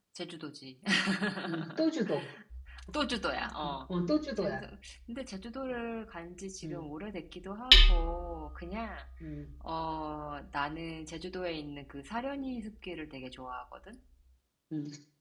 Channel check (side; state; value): both; identical; correlation 1.00